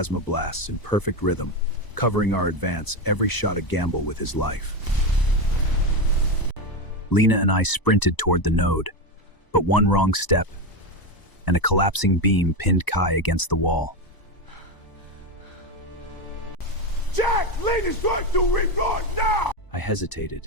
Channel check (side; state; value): right; late; 1.0 ms